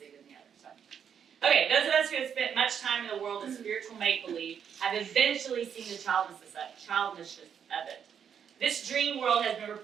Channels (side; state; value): left; quieter; 7.9 dB